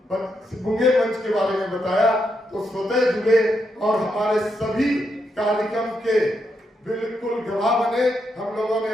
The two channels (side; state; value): both; normal; correlation 0.81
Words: मुंगेर मंच के बारे में बताया तो स्वतः जुड़े और हमारे सभी कार्यक्रम के बिल्कुल गवाह बने। हम लोगों ने